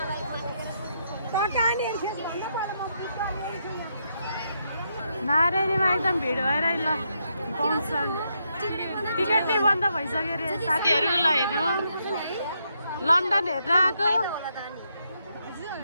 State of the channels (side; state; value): both; inverted; correlation -0.79